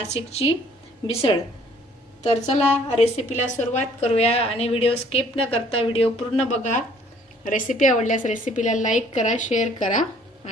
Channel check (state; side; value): normal; both; correlation 0.59